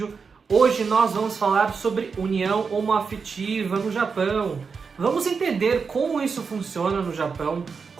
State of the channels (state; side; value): quieter; left; 5.4 dB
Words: Hoje nós vamos falar sobre união homoafetiva no Japão. Vamos entender como isso funciona no Japão,